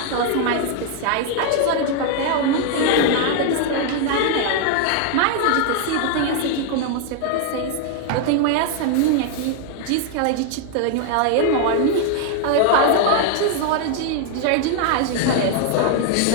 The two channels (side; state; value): both; different; correlation 0.00